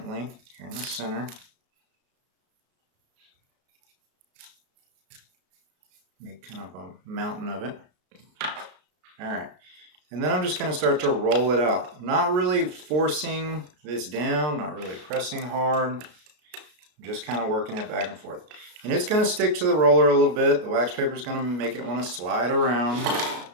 here in the center. Make kind of a mountain of it. All right. And then I'm just going to start to roll it out. I'm not really forcing this down, not really pressing hard. I'm just kind of working it back and forth. And it's going to stick to the roller a little bit. The wax paper is going to make it want to slide around.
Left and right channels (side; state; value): left; late; 33 ms